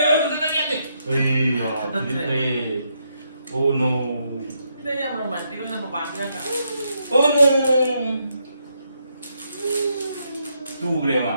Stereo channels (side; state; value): both; inverted; correlation -0.78